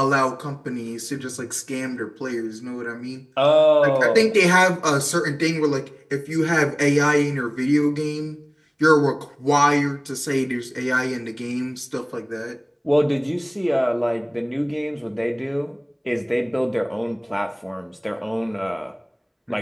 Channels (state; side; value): identical; both; correlation 1.00